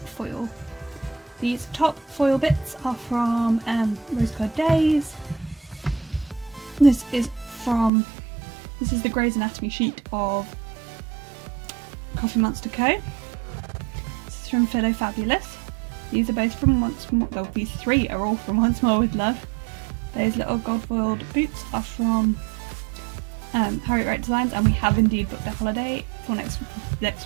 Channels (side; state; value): left; drops out; at 7.9 s